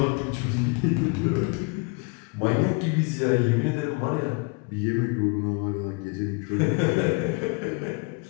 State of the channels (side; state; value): right; quieter; 31.5 dB